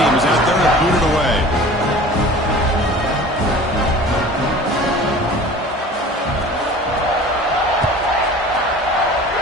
is out there to boot it away.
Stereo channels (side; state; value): both; normal; correlation 0.42